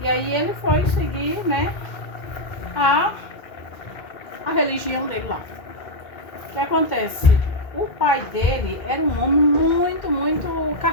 E aí ele foi seguir, né, a religião dele lá. O que acontece? O pai dele era um homem muito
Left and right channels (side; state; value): right; late; 2.3 ms